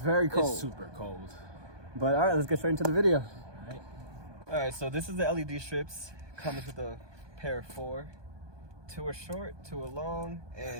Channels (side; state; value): left; late; 1.2 ms